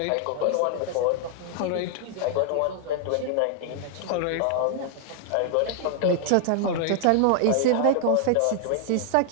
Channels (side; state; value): both; different; correlation 0.00